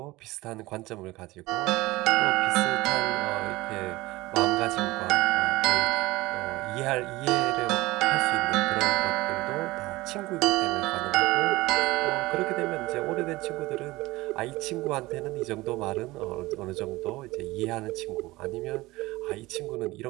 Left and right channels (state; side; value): quieter; left; 19.8 dB